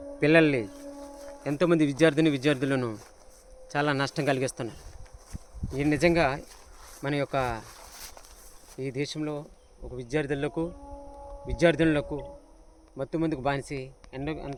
పిల్లల్ని ఎంతోమంది విద్యార్థులను చాలా నష్టం కలిగిస్తున్నారు. ఇది నిజంగా మన యొక్క ఈ దేశంలో ఒక విద్యార్థులకు మత్తుమందుకు బానిసి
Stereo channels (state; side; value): identical; both; correlation 1.00